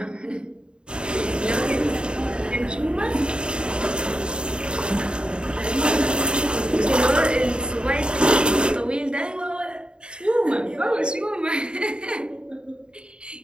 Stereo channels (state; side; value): late; left; 0.051 ms